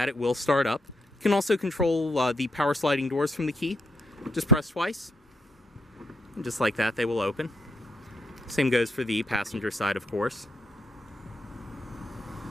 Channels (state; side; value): normal; both; correlation 0.76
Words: it will start up. You can also control the power sliding doors from the key. Just press twice, and just like that, they will open. Same goes for the passenger side, of course.